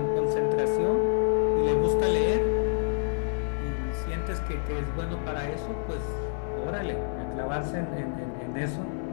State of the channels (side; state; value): right; silent; 58 dB below the other